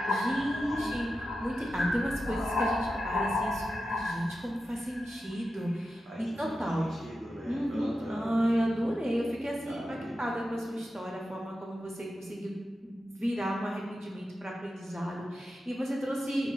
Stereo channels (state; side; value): normal; both; correlation 0.91